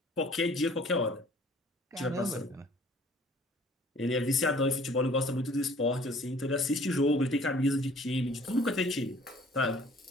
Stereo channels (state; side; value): normal; both; correlation 0.53